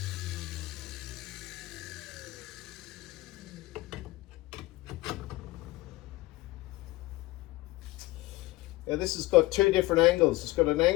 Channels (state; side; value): quieter; right; 19.7 dB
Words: Now this has got two different angles. It's got an